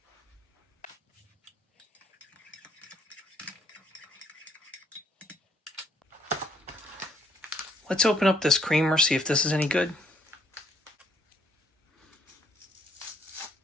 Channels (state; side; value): normal; both; correlation 0.67